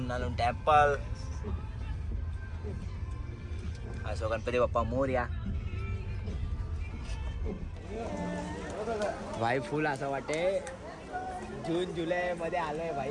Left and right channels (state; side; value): identical; both; correlation 1.00